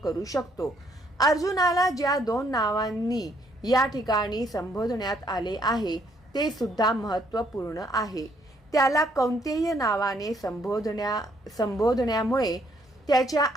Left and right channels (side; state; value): both; normal; correlation 0.69